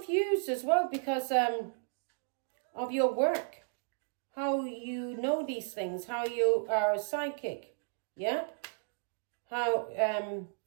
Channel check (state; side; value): silent; left; digital silence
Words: as well because of your work. How you know these things. How you are a psychic. Yeah? How